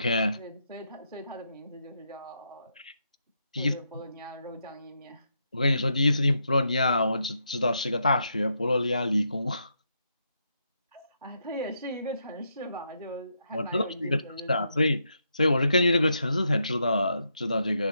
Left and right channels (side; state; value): both; inverted; correlation -0.80